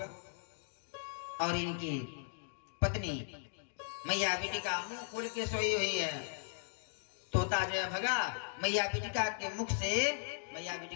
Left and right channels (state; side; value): silent; right; digital silence